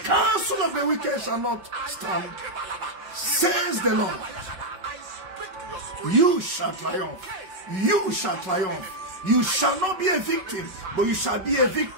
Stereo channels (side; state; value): left; late; 5.3 ms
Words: counsel of the wicked shall not stand. Says the Lord. You shall triumph. You shall triumph. You shall not be a victim, but you shall be a